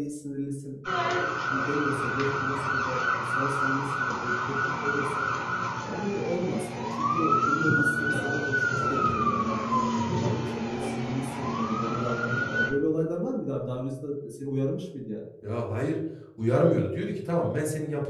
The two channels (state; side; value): identical; both; correlation 1.00